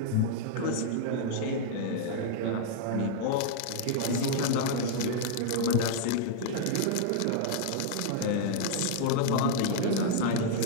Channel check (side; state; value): both; different; correlation -0.01